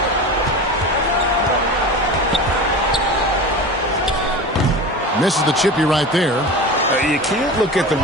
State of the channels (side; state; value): both; normal; correlation 0.31